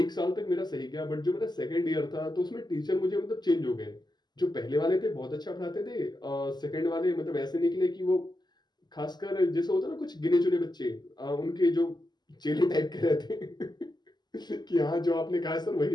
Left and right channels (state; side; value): late; right; 0.21 ms